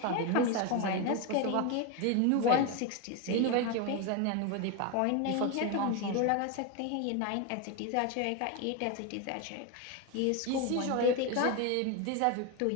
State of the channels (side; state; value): both; different; correlation 0.02